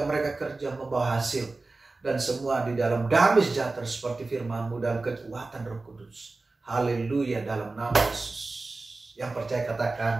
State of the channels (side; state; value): left; quieter; 3.4 dB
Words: mereka kerja membawa hasil, dan semua di dalam damai sejahtera seperti firman-Mu dalam kekuatan Roh Kudus. Haleluya, dalam nama Yesus. Yang percaya